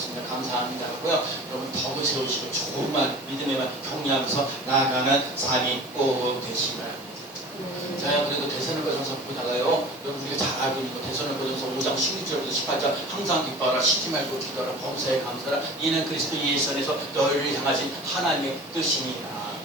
감사합니다. 하고요. 여러분 덕을 세우시고 좋은 말 믿음의 말 격려하면서 나아가는 삶이 꼭 되시기 바랍니다. 제가 그래도 대선을거전서 보다가요 여러분 우리가 잘 알고 있는 거 대선을거전서 5장 16절부터 18절 항상 기뻐하라 쉬지 말고 기도하라 범사에 감사하라 이는 그리스도 예수 안에서 너희를 향하신 하나님의 뜻입니다.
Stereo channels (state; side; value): normal; both; correlation 0.40